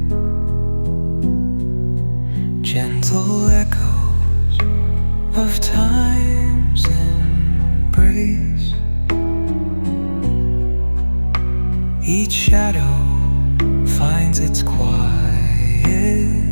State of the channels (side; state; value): both; inverted; correlation -1.00